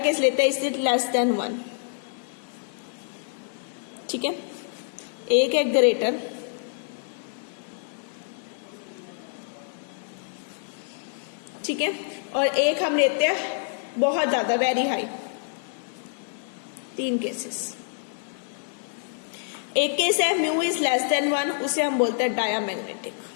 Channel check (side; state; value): right; silent; digital silence